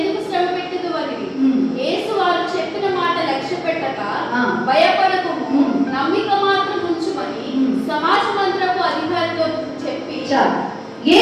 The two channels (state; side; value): identical; both; correlation 1.00